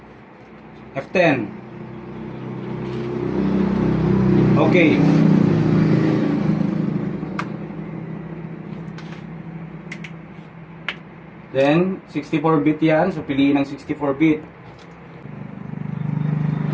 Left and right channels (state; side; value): identical; both; correlation 1.00